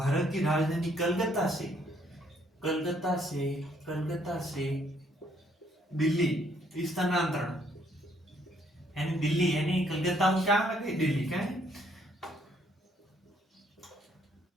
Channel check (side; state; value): both; normal; correlation 0.67